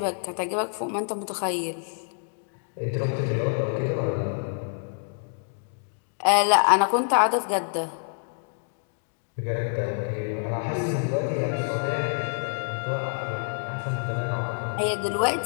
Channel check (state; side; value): silent; right; digital silence